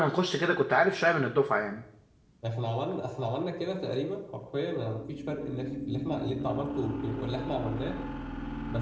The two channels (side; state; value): both; identical; correlation 1.00